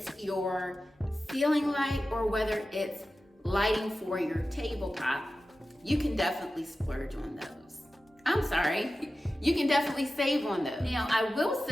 your ceiling light or whether it's lighting for your tabletop, you can definitely splurge on those. I'm sorry, you can definitely save on those. Now, I will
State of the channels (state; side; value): normal; both; correlation 0.94